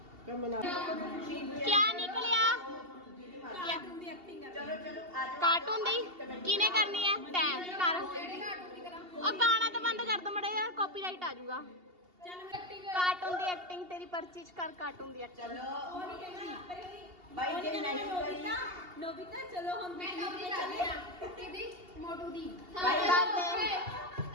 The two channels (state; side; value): late; left; 2.8 ms